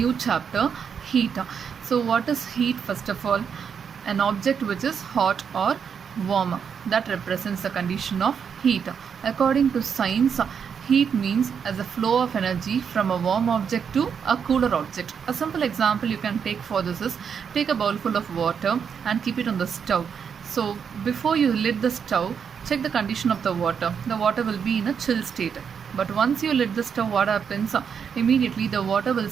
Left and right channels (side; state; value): left; quieter; 7.0 dB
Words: chapter, heat. So what is heat? First of all, an object which is hot or warm, that represents the condition of heat. According to science, heat means as a flow of energy from a warm object to a cooler object. A simple example you can take for this is, take a bowl full of water and keep it on the stove. So before you lit the stove, check the condition of the water. The water will be in a chill state. But once you lit the stove, what happens? Immediately the water will